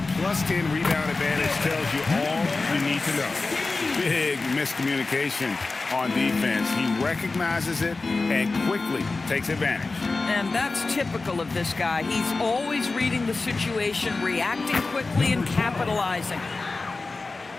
+10 rebound advantage tells you all you need to know. Big miscommunication on defense. He recognizes it and quickly takes advantage. And that's typical of this guy. He's always reading the situation, reacting quickly, and capitalizing.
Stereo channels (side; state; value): right; quieter; 3.7 dB